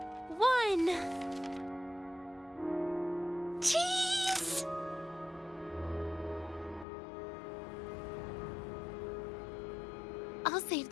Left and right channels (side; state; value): right; drops out; at 6.9 s